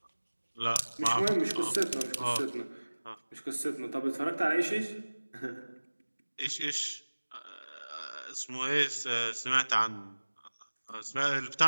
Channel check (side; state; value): both; inverted; correlation -1.00